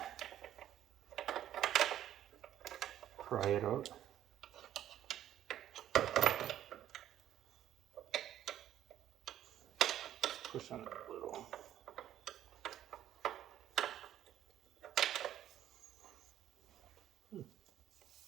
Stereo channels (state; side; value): quieter; left; 11.7 dB